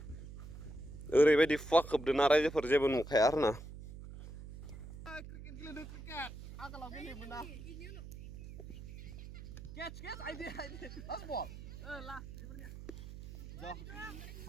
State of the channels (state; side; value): noise; right; hum, 12 dB below the sound